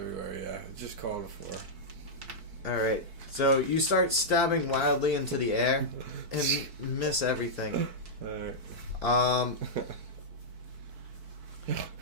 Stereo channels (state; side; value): late; left; 4.6 ms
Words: yeah. Just call it a 4. Alright, so you start stabbing wildly into the air and miss everything. Alright.